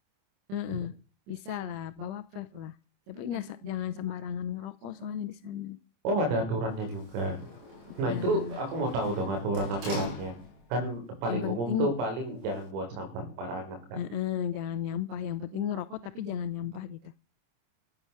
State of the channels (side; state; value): left; late; 25 ms